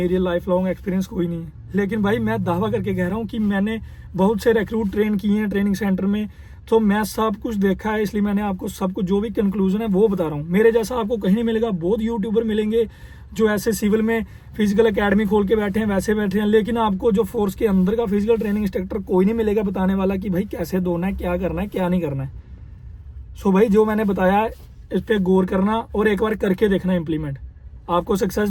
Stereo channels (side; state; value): both; identical; correlation 1.00